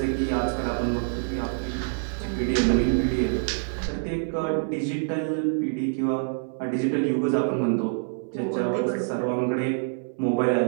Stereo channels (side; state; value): left; silent; 61 dB below the other